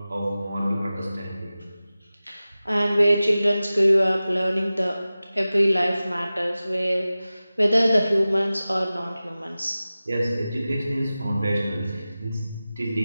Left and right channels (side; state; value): both; inverted; correlation -0.96